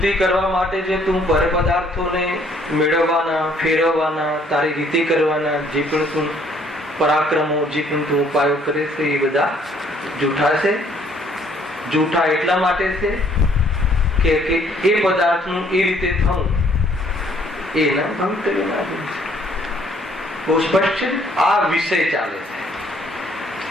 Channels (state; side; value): normal; both; correlation 0.63